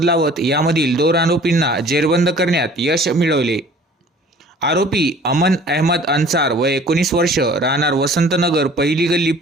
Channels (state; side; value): normal; both; correlation 0.49